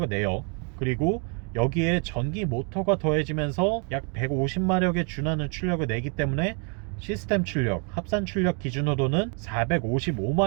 내요. 그리고 여기에 전기 모터가 더해지면서 약 150마력에 준하는 출력을 내기 때문에 시스템 출력, 합산 출력 기준으로는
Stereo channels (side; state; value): left; quieter; 36.7 dB